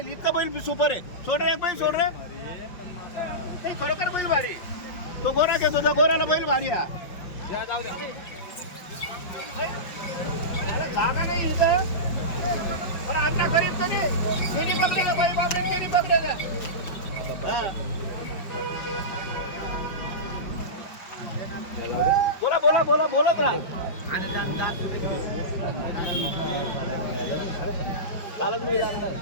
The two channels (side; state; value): right; late; 5.5 ms